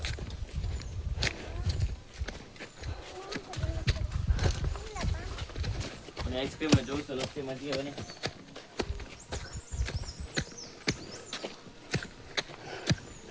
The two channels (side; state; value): both; identical; correlation 1.00